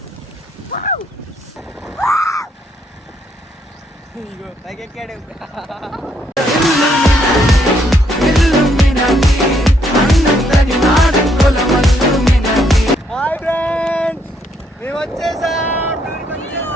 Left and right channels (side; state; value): both; normal; correlation 0.72